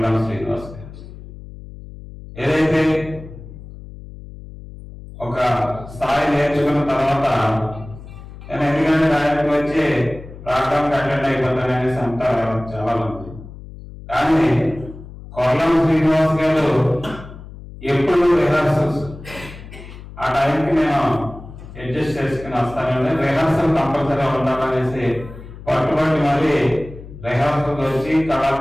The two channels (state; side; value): noise; left; hum, 15 dB below the sound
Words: శ్రీనివాస్ గారు. ఏదైతే ఒక స్థాయి నేర్చుకున్న తర్వాత నేను ఎందుకంటే ఆయనకు వచ్చి ప్రోగ్రామ్కి అటెండ్ అయిపోతాననేసి అంటారు చాలా మంది. కానీ కొల్లం శ్రీనివాస్ గారు ఎప్పుడు రిహార్సల్స్ ఆ టైంకి నేను అడ్జస్ట్ చేసుకుని వస్తానండి. రిహార్సల్ కంపల్సరీగా ఉండాలనేసి పట్టుబట్టి మరి రిహార్సల్ వచ్చి